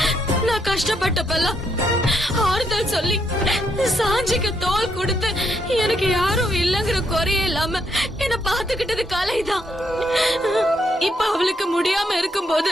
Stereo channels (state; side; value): normal; both; correlation 0.76